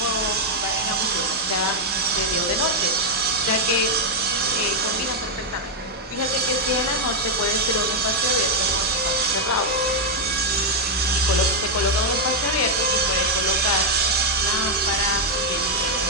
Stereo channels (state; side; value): normal; both; correlation 0.00